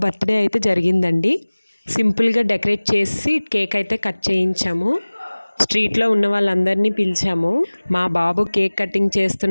బర్త్డే అయితే జరిగిందండి. సింపుల్గా డెకరేట్ చేసి కేక్ అయితే కట్ చేయించాము. స్ట్రీట్లో ఉన్న వాళ్ళందరినీ పిలిచాము. మా బాబు కేక్ కటింగ్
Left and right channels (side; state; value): both; inverted; correlation -1.00